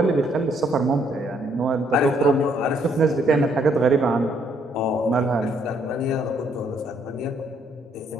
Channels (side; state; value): both; normal; correlation 0.69